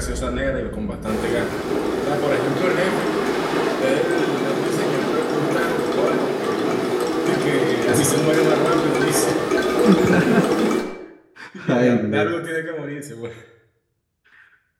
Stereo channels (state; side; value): identical; both; correlation 1.00